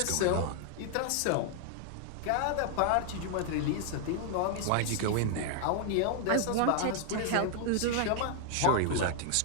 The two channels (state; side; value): different; both; correlation 0.00